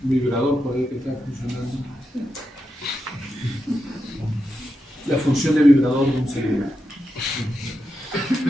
vibrador por ahí que está funcionando. La función de vibrador de un celular.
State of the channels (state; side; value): normal; both; correlation 0.87